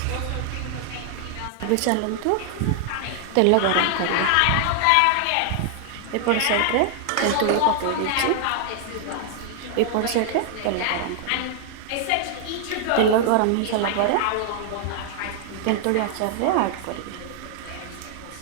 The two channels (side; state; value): both; different; correlation 0.00